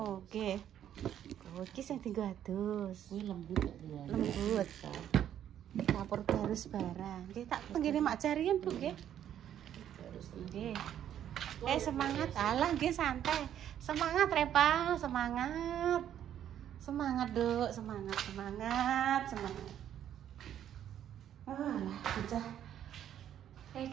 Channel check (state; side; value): quieter; left; 10.4 dB